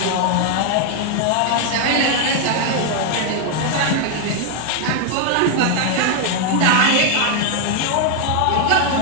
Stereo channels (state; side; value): different; both; correlation 0.00